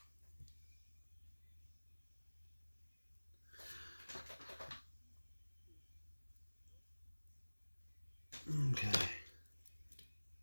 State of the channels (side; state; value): both; inverted; correlation -1.00